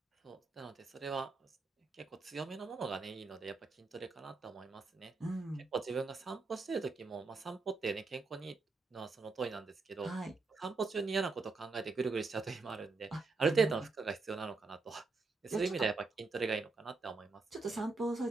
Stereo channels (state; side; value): quieter; left; 3.8 dB